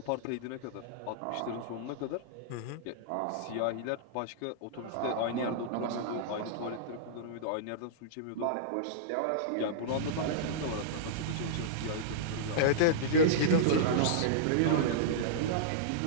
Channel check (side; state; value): both; different; correlation -0.03